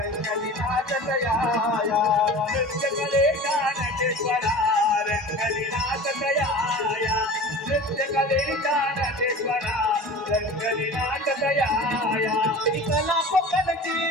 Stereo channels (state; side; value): normal; both; correlation 0.37